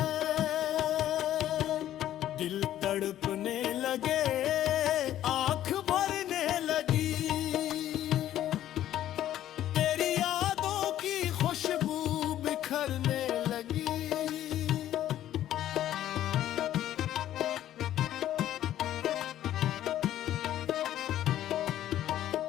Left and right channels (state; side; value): quieter; right; 12.3 dB